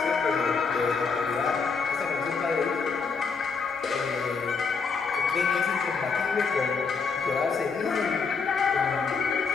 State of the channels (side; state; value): right; quieter; 5.1 dB